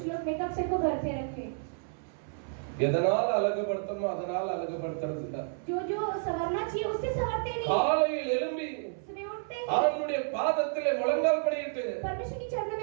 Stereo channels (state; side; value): silent; left; 57 dB below the other